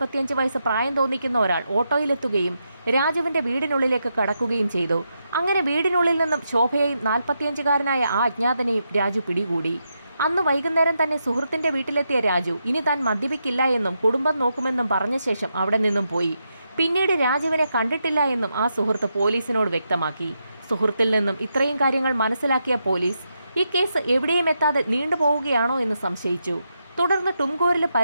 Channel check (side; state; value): both; inverted; correlation -0.84